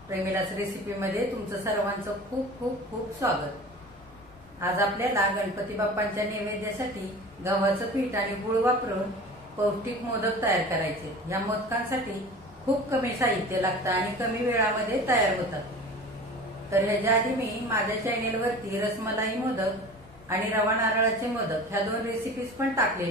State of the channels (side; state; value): both; normal; correlation 0.38